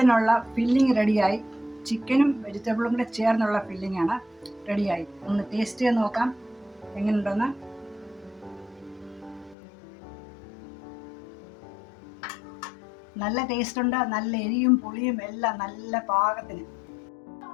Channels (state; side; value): drops out; right; at 9.6 s